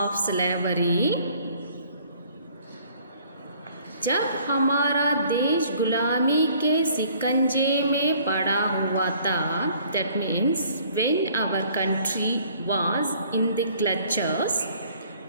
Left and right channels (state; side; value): inverted; both; correlation -0.57